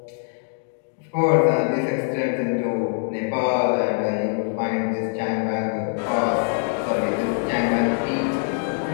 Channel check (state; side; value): silent; right; digital silence